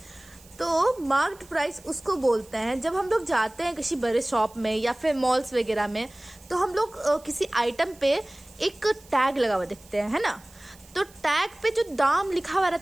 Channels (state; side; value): noise; right; hiss, 25 dB below the sound